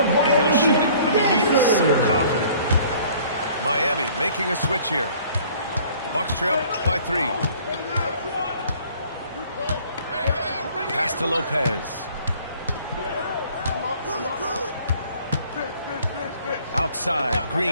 and he'll shoot it. I mean, he is so confident. Miami making a switch here. Bucks trail by 3. Pass to Lopez. Outside,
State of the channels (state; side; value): inverted; both; correlation -0.54